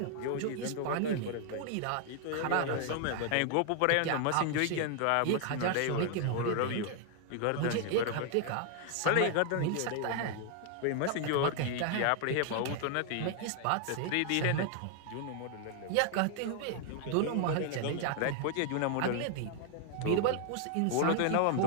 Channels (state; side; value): different; both; correlation 0.00